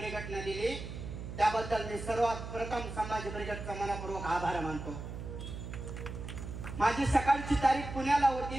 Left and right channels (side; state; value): right; noise; hum, 8 dB below the sound